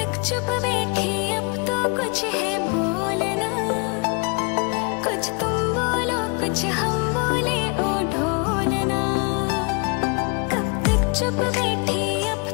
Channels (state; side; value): quieter; right; 32.1 dB